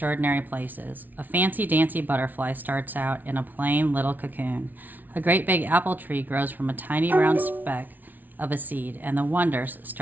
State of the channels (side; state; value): left; late; 0.083 ms